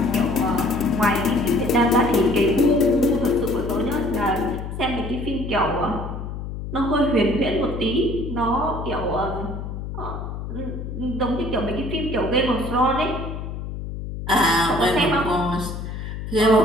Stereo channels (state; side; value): noise; left; hum, 7 dB below the sound